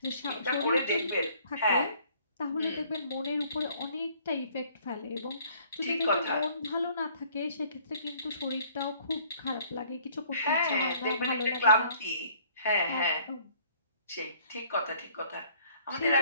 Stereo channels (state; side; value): inverted; both; correlation -0.59